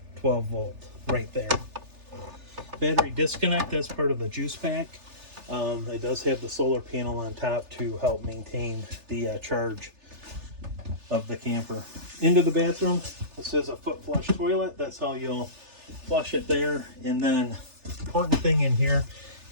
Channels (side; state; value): left; late; 3.4 ms